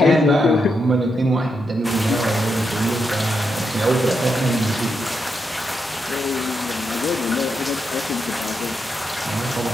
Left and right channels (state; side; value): normal; both; correlation 0.83